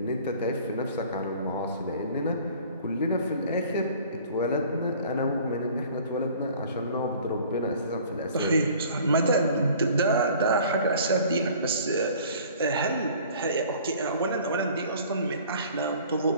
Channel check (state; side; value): inverted; both; correlation -0.50